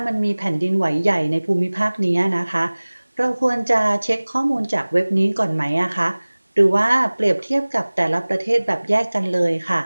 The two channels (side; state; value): both; inverted; correlation -1.00